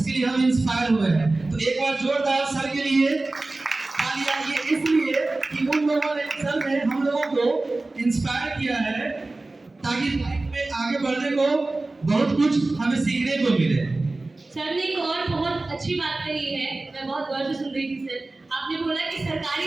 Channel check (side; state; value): left; quieter; 3.1 dB